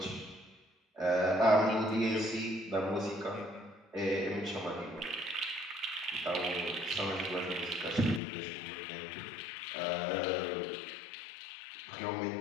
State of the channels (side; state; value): right; drops out; at 8.2 s